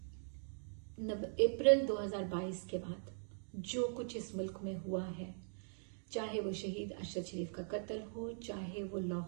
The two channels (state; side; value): silent; left; digital silence